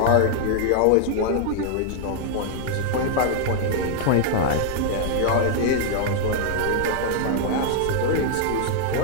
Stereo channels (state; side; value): different; both; correlation 0.00